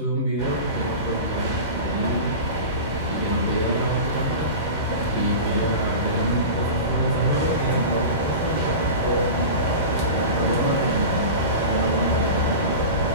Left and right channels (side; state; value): both; inverted; correlation -0.30